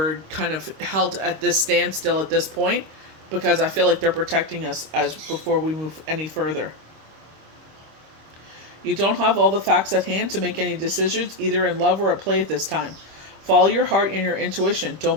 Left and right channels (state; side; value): late; left; 26 ms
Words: kind of held at this standstill at this point, because I feel like they're protecting us as before we move any further. You don't have all the facts at hand to make any decisions, either in love or at play at this time. Follow your heart and your intuition. Don't